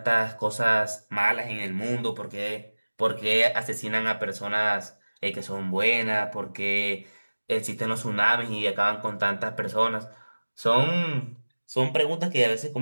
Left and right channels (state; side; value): inverted; both; correlation -1.00